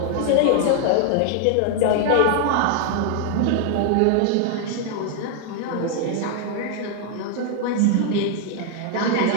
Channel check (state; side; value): different; both; correlation 0.00